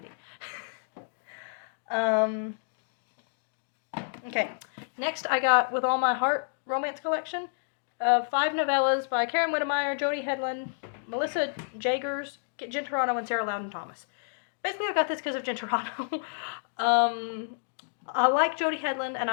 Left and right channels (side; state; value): right; silent; digital silence